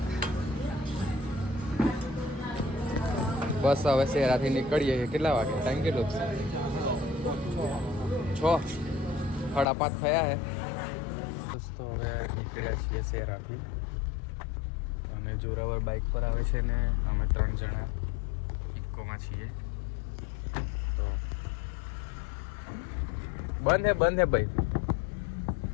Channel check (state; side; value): drops out; right; at 9.7 s